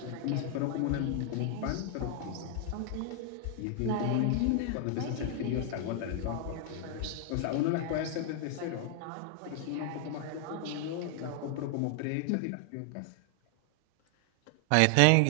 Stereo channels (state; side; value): different; both; correlation 0.00